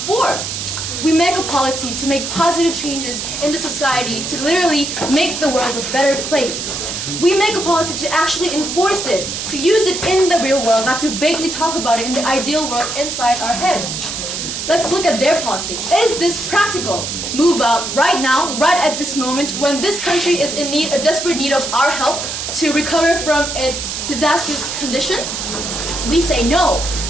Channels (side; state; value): right; noise; hiss, 5 dB below the sound